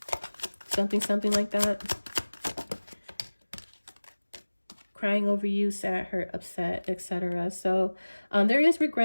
something like that. Crying over you, sad, hurt, upset, etc. So there is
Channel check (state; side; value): inverted; both; correlation -1.00